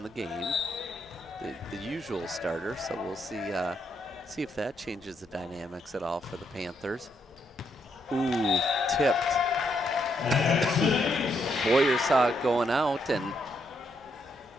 the game, the usual starter. So we'll see if that changes the dynamics at all for the Panthers. Ooh, tipped. Boyer saw it going out and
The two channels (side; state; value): both; normal; correlation 0.77